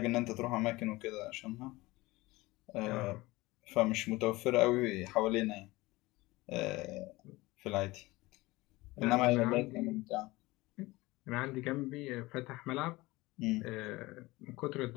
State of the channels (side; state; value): right; quieter; 20.7 dB